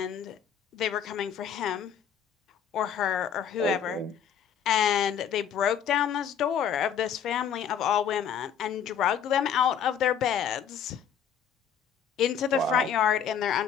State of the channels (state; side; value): quieter; right; 8.1 dB